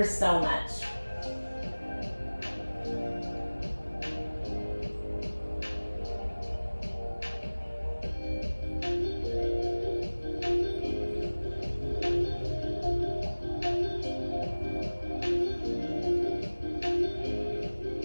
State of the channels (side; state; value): both; inverted; correlation -1.00